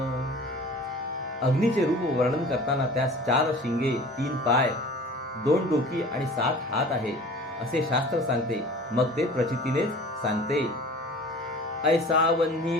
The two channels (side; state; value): both; normal; correlation 0.43